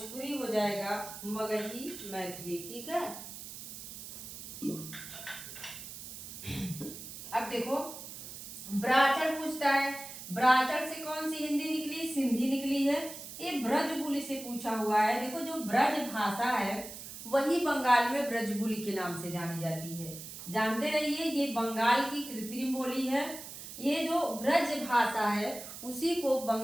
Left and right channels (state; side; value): noise; right; hiss, 11 dB below the sound